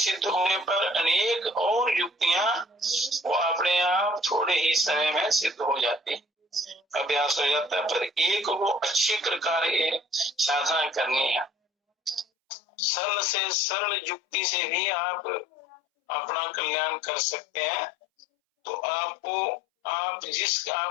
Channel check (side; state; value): right; drops out; at 12.2 s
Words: होने पर अनेक और युक्तियां वो अपने आप थोड़े ही समय में सिद्ध हो जाती। अभ्यास हो जाता है। पर एक वो अच्छी प्रकार ये साधना करनी है। सरल से सरल युक्ति से भी आप अपना कल्याण कर सकते हैं। तो